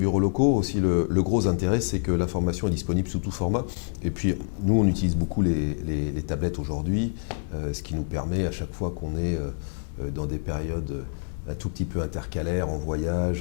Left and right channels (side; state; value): right; silent; digital silence